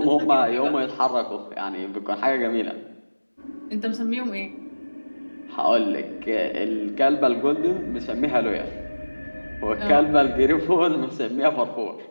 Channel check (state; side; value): inverted; both; correlation -1.00